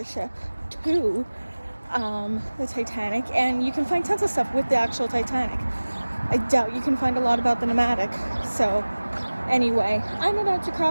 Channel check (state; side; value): inverted; both; correlation -1.00